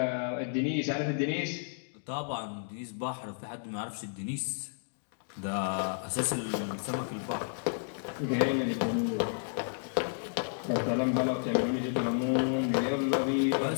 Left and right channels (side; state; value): right; silent; digital silence